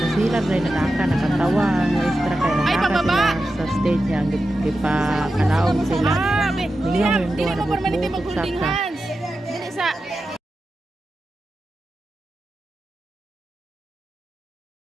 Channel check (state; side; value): normal; both; correlation 0.91